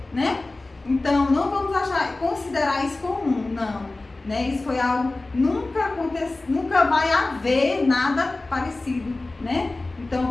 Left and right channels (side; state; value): right; quieter; 3.1 dB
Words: né? Então, não vamos considerar isso comum, não. Né? Isso foi algo, nunca vai haver nada parecido, né? Então,